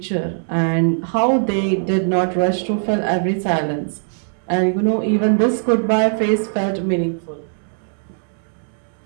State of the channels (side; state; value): left; silent; digital silence